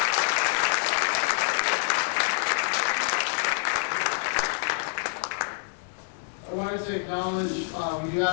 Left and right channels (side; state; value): right; silent; digital silence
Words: I wanted to acknowledge, we do